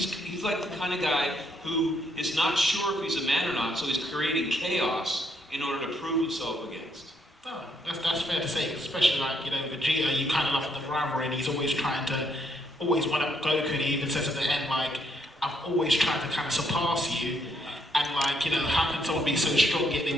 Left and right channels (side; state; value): both; normal; correlation 0.73